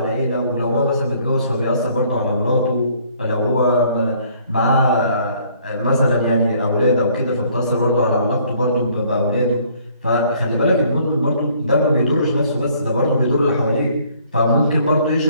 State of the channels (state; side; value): inverted; both; correlation -0.61